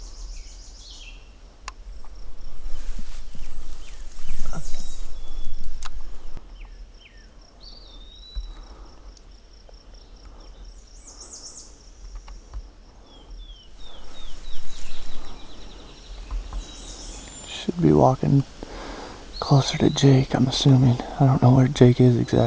Should be walking closer to Jake, I'm assuming. I don't know where Jake is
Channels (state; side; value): identical; both; correlation 1.00